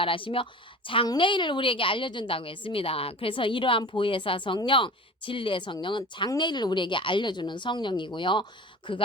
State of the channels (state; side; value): normal; both; correlation 0.37